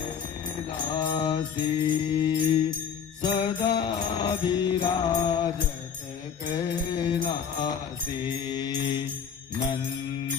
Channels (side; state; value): right; quieter; 7.4 dB